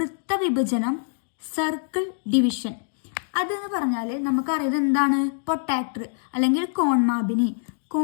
സർക്കിൾ ഡിവിഷൻ. അതെന്ന് പറഞ്ഞാൽ നമുക്കറിയാം എന്താണ് പ്രൊട്ടാക്ടർ അല്ലെങ്കിൽ കോൺമാപിനി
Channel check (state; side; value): silent; right; digital silence